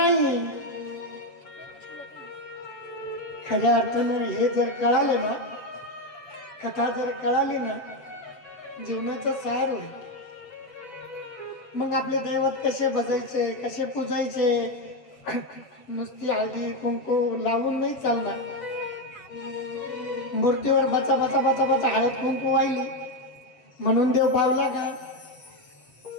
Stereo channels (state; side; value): late; right; 8.0 ms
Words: खऱ्या अर्थानं हे जर कळालं ना, कथा जर कळाली ना, जीवनाचा सार होईल. मग आपले दैवत कसे भजायचे, कसे पूजायचे, नुसती हळदी कुंकू लावून नाही चालणार. मूर्तीवर बचा बचा बचा बचा हळद कुंकू वाहिली म्हणून देव पावला का?